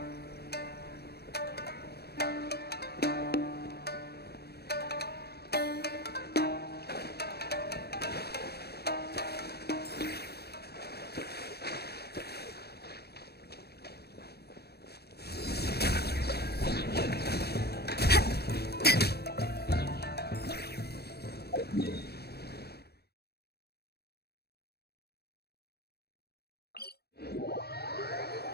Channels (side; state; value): right; late; 0.47 ms